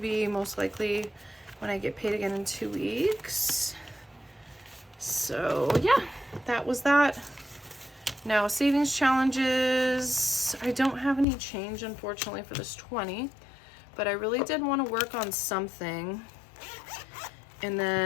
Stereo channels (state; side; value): drops out; right; at 11.2 s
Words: most likely when I get paid again in 2 weeks. So yeah, that was that. Now savings challenges, I don't have any change unfortunately for this 20, but I really did want to work on something. And